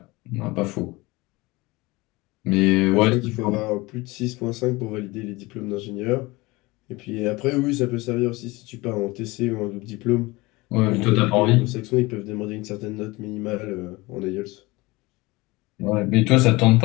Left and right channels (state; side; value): quieter; right; 22.4 dB